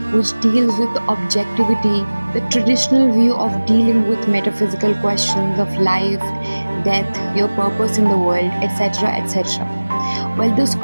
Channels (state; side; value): inverted; both; correlation -1.00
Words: which deals with objectivity, the traditional view of dealing with metaphysical questions of life, death, your purpose in the world, etc. etc. While this